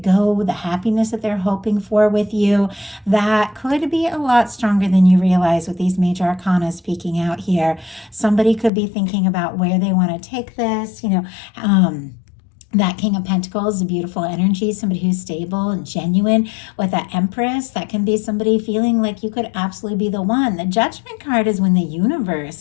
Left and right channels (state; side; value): drops out; right; at 8.7 s